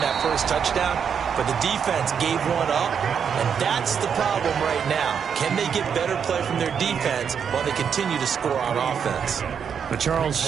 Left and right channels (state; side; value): quieter; left; 7.2 dB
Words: that first touchdown, but the defense gave one up, and that's the problem right now. Can they get better play from their defense while they continue to score on offense? But